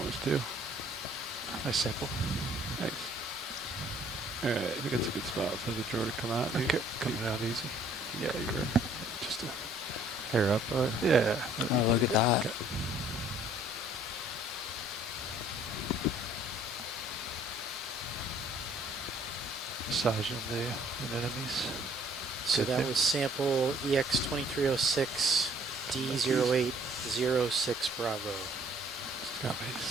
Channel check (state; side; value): normal; both; correlation 0.59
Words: us too. Nice sample. Nice. All right, I think that's a good spot for the drawer to come out. Okay. Coming out easy. Yeah, Okay, you're just a hair up. yeah. Oh, look at that. Okay. Massaging the anemones. So Good that there. was sample EX2306 D0806 Bravo.